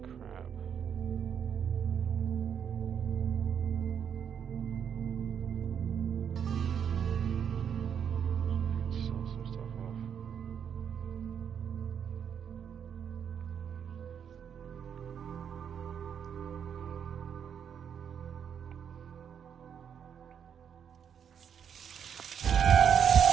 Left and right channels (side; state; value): left; quieter; 8.0 dB